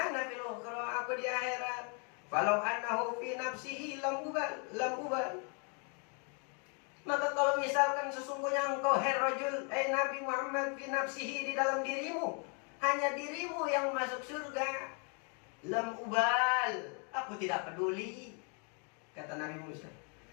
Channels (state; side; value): quieter; right; 37.7 dB